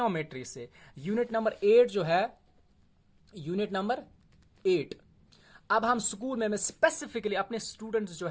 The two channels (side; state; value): both; identical; correlation 1.00